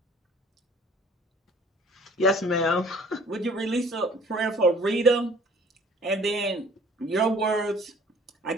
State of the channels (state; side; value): normal; both; correlation 0.52